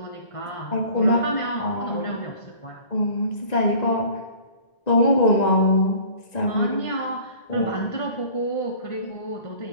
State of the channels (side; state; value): right; late; 1.9 ms